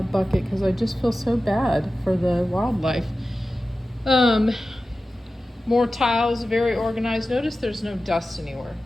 bucket because I just feel so bad for the wildlife. More tiles, very organized. Notice there's no dust anywhere.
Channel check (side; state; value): both; normal; correlation 0.94